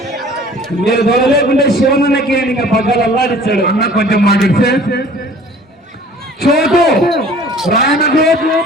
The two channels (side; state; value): both; normal; correlation 0.49